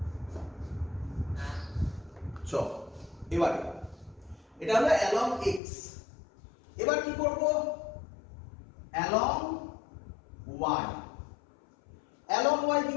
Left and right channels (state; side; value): drops out; right; at 5.6 s